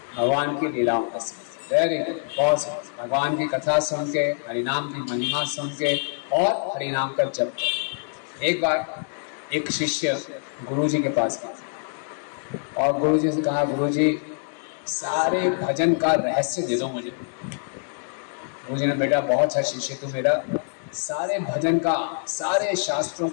भगवान की लीलाओं का वेरी गुड, बहुत भगवान की कथा सुन के, हरिनाम की महिमा सुन के और हरिनाम का जप। एक बार एक शिष्य गुरुजी के पास गया और गुरुजी से कहा, गुरुजी सारे भजन का रहस्य दे दो मुझे। गुरुजी ने, बेटा बहुत अच्छा शिष्य तू मेरा, सारे भजन का, सारे शास्त्रों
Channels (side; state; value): right; silent; digital silence